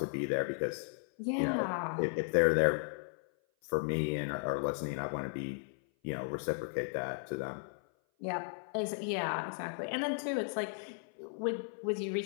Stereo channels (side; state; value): right; silent; 54 dB below the other